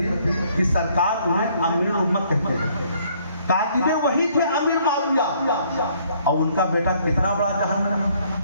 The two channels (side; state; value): both; inverted; correlation -0.64